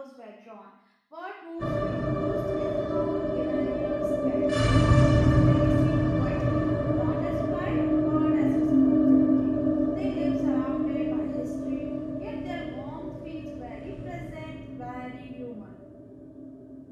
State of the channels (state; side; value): identical; both; correlation 1.00